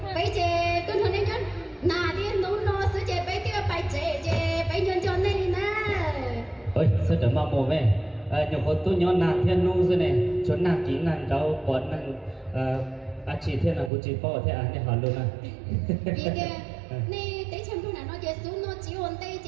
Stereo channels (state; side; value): drops out; left; at 13.9 s